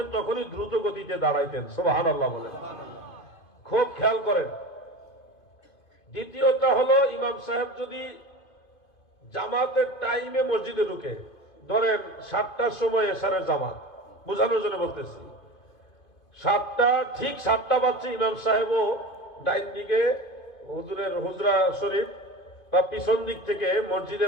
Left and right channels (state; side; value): late; right; 2.5 ms